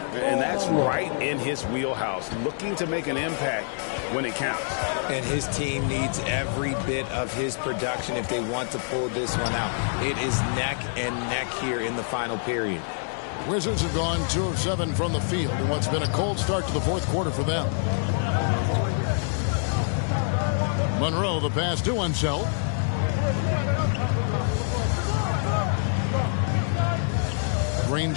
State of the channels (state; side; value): silent; right; digital silence